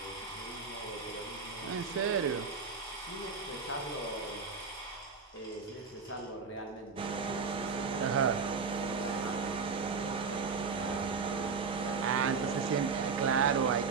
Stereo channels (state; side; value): quieter; left; 5.1 dB